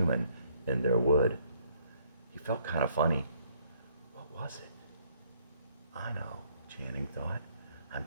in their wood. He felt kind of funny. What was it? I know, Channing thought. I'm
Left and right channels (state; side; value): inverted; both; correlation -0.67